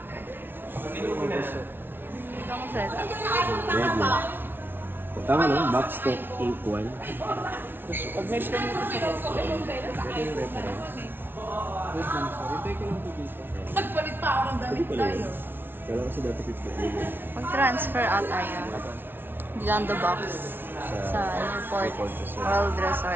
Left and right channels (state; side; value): late; left; 0.10 ms